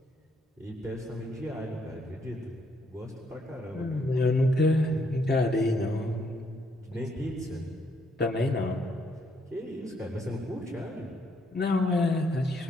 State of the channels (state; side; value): normal; both; correlation 0.72